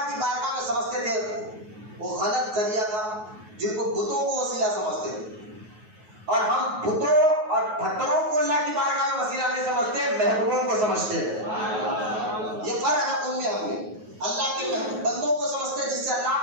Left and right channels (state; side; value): late; left; 9.4 ms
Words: کی بارگاہ میں سمجھتے تھے وہ غلط ذریعہ تھا، جن کو بتوں کو وسیلہ سمجھتے تھے. اور ہم بتوں اور پتھروں کو اللہ کی بارگاہ میں وسیلہ نہیں سمجھتے، محبوبوں کو سمجھتے ہیں. یہ فرق ہے ان میں ہم میں. اللہ کے بندوں کو سمجھتے ہیں جس سے اللہ